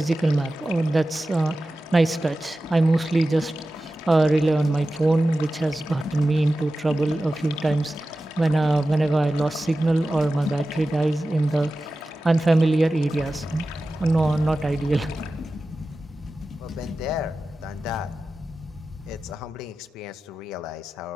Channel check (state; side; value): normal; both; correlation 0.94